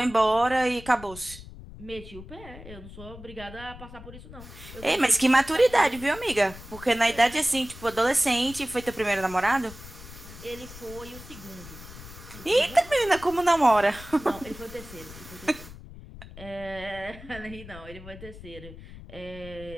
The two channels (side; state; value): left; noise; rumble, 16 dB below the sound